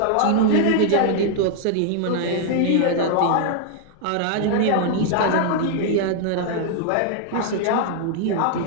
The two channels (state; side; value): different; both; correlation 0.00